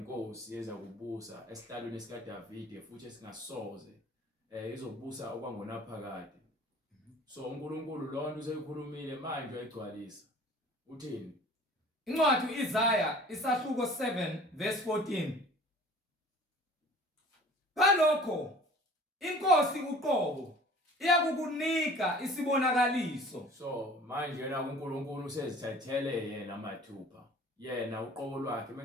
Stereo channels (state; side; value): normal; both; correlation 0.47